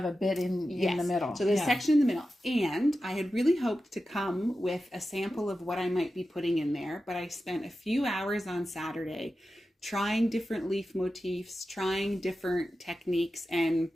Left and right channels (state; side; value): normal; both; correlation 0.92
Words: a bit in the middle. So there's a section in the middle. And I had really hoped to come with a sample of what I might be putting in there, but I spent a few hours on Saturday trying different leaf motifs, trying different techniques, and